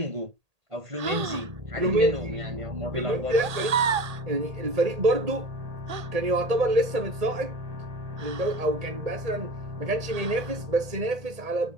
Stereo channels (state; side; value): late; left; 1.8 ms